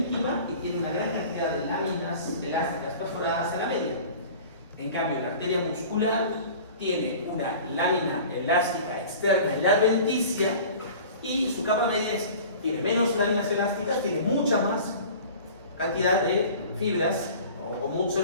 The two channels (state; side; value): inverted; both; correlation -0.42